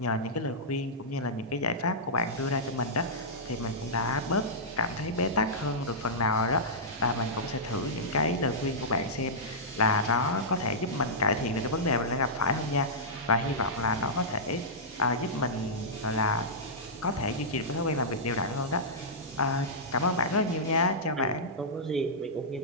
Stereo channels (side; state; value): both; normal; correlation -0.13